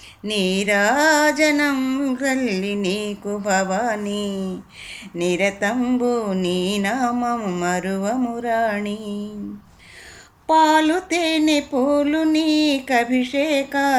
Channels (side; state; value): both; identical; correlation 1.00